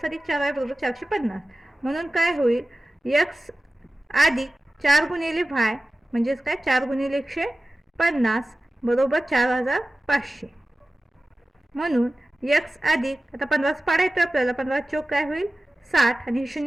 अधिक 4Y बरोबर 450. म्हणून काय होईल X अधिक 4 गुणिले Y म्हणजेच काय 4 गुणिले 150 बरोबर 4,500. म्हणून X अधिक आता 15 पाडा येतो आपल्याला 15 चौक काय होईल 60 आणि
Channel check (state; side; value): normal; both; correlation 0.95